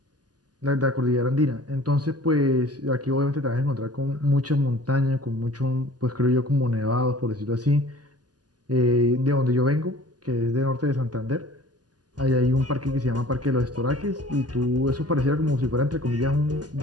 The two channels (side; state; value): left; late; 0.69 ms